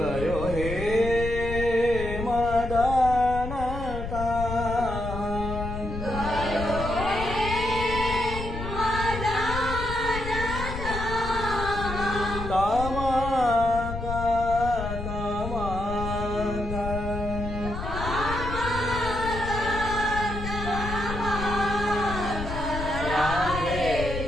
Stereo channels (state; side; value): noise; left; rumble, 6 dB below the sound